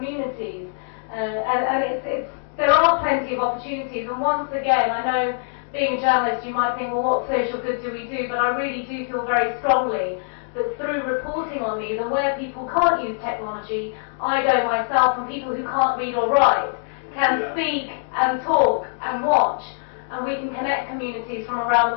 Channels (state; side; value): silent; right; digital silence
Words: And there are plenty of opportunities. And once again, I know being a journalist, you might think, well, what social good do we do? But I really do feel very strongly that through reporting on these, and where people can't use technology, I go myself, and people who can't read or write can speak and talk and watch, and we can connect communities from around